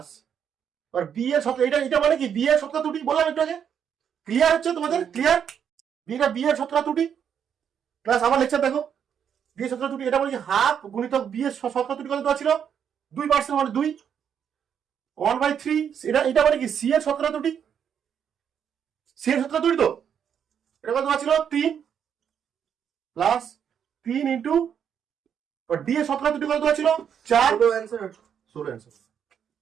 আর বি এর শতকরা, এটা এটা মানে কি বি এর শতকরা ত্রুটি বললাম একটু আগে, ক্লিয়ার হচ্ছে তোমাদের, ক্লিয়ার বিটা বি এর শতকরা ত্রুটি প্লাস আমার লেকচার দেখো বি এর শতকরা ত্রুটি, এটা মানে কি হাফ গুণিতক বি এর শতকরা ত্রুটি কত দেওয়া ছিল 2% মানে 2 1/3, এটা এটা মানে কি সি এর শতকরা ত্রুটি, সি এর শতকরা ত্রুটি তো এটা কত দেওয়া ছিল 3 প্লাস 3 ইন্টু ডি এর শতকরা ত্রুটি কত দেওয়া ছিল 4 ছোট answer 16 answer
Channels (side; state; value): left; quieter; 8.2 dB